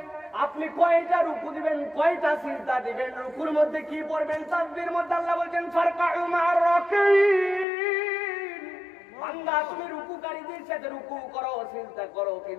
আপনি কয়টা রুকু দিবেন, কয়টা সিজদা দিবেন, রুকুর মধ্যে কি পড়বেন। তাসবিহের মধ্যে আল্লাহ বলেন ফারকাউ মা'আর রাকিন, বান্দা তুমি রুকুকারীদের সাথে রুকু করো, সিজদা করো,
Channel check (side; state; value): right; drops out; at 7.7 s